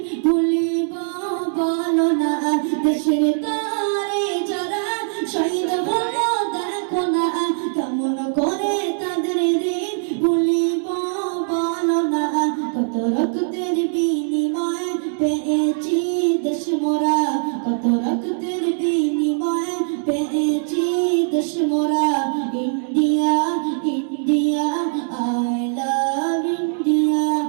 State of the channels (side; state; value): left; silent; digital silence